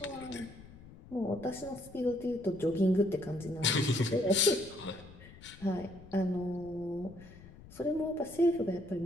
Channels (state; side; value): noise; left; rumble, 19 dB below the sound